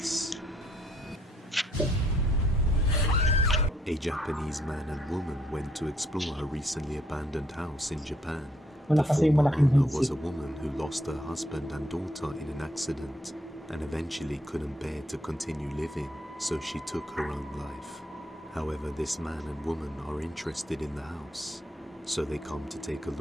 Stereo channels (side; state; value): both; normal; correlation 0.69